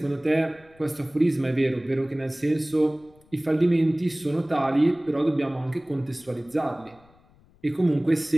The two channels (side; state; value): left; noise; rumble, 30 dB below the sound